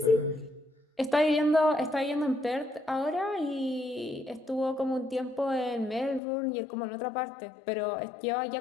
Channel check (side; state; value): right; drops out; at 6.2 s